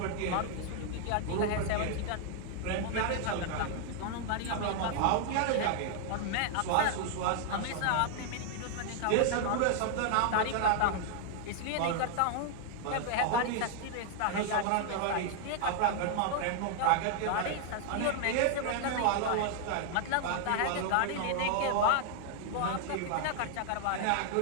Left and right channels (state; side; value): different; both; correlation 0.00